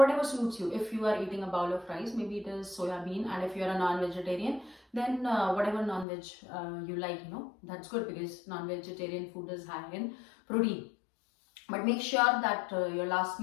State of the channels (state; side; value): drops out; right; at 6.1 s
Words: suits you. If you are eating a bowl of rice, maybe it is soya bean, and if you are a non-vegetarian, then whatever non-veg you like, that's good, because non-vegetarian food is high in protein. But make sure that your last